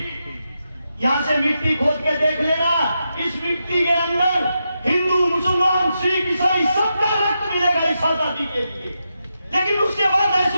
यहाँ से मिट्टी खोद के देख लेना, इस मिट्टी के अंदर हिंदू मुसलमान सिख ईसाई सबका रक्त मिलेगा इस आजादी के लिए। लेकिन उसके बाद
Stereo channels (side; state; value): both; inverted; correlation -0.86